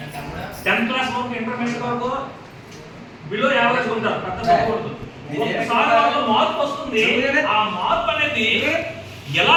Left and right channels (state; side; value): identical; both; correlation 1.00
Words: 10th క్లాస్ వరకు, ఇంటర్మీడియట్ వరకు బిలో యావరేజ్ ఉంటారు, పెద్ద చదవకూడదు. ఒకసారి మార్పు వస్తుంది. ఆ మార్పు అనేది ఎలా